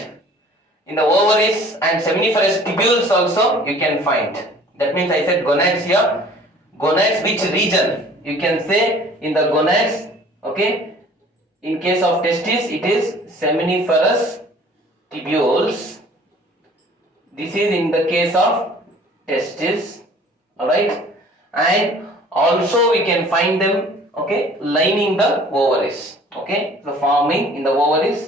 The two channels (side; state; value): both; normal; correlation 0.51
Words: in the ovaries and seminiferous tubules also you can find. That means I said gonads here. Gonads, which region? You can say in the gonads, okay. In case of testes, it is seminiferous tubules. This is in the case of testes, alright. And also we can find them, okay, lining the ovaries, okay. So forming in the